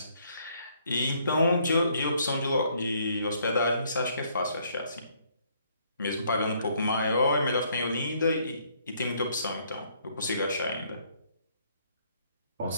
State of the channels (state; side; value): inverted; both; correlation -0.67